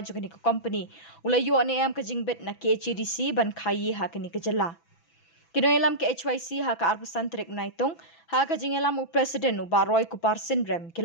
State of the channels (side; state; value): right; late; 6.0 ms